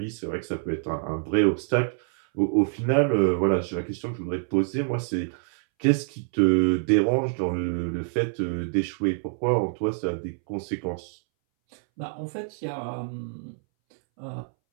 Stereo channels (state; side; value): silent; left; 61 dB below the other